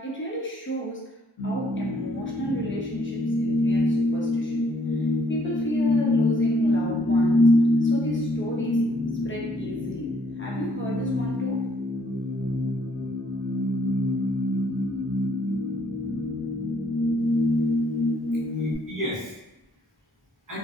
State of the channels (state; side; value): normal; both; correlation 0.66